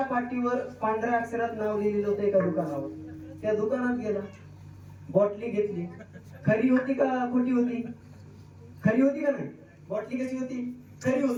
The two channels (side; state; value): both; identical; correlation 1.00